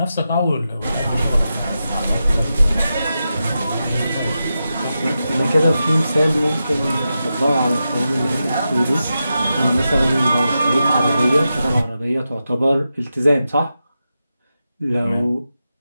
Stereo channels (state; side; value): inverted; both; correlation -0.89